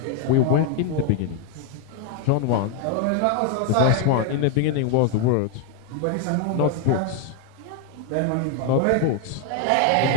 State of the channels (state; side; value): different; both; correlation 0.01